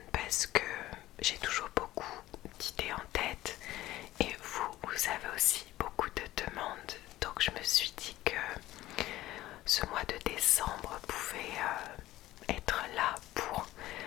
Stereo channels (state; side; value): quieter; right; 15.8 dB